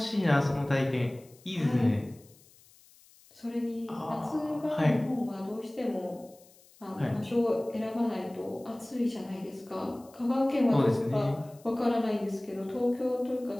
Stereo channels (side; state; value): left; noise; hiss, 27 dB below the sound